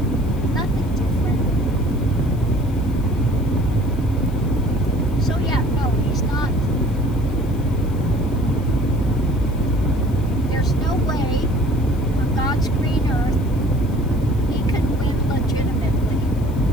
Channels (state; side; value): noise; left; hiss, 24 dB below the sound